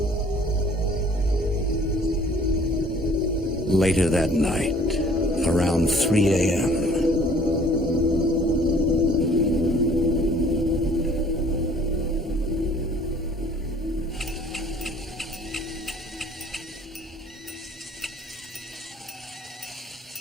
Later that night, around 3 a.m.,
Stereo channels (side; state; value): both; normal; correlation 0.55